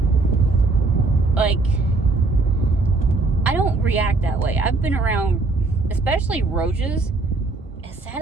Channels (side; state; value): left; quieter; 3.5 dB